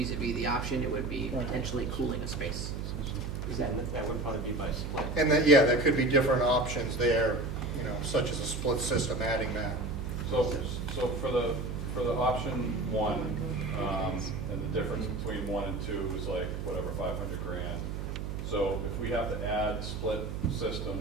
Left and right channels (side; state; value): right; noise; hum, 5 dB below the sound